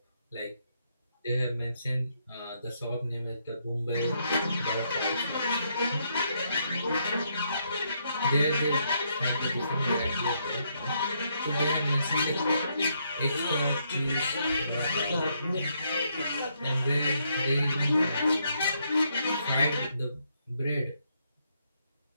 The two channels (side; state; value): both; inverted; correlation -0.76